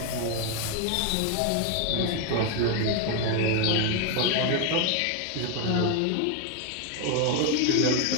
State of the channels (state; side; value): different; both; correlation 0.01